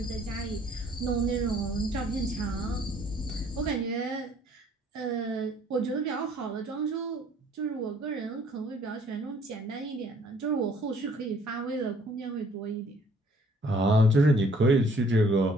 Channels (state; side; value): normal; both; correlation 0.59